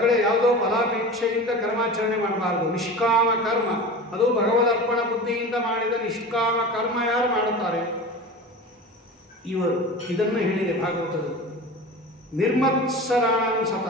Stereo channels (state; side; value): normal; both; correlation 0.33